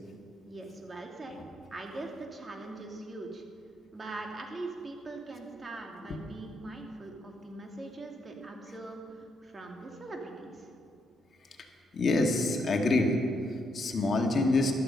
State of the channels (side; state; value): both; normal; correlation 0.78